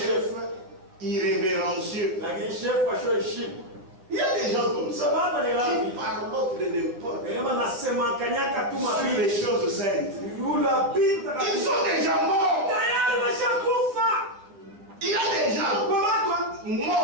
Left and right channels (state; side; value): late; left; 10 ms